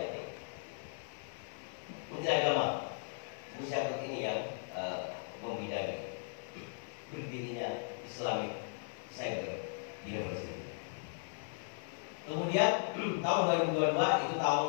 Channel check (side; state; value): right; silent; 53 dB below the other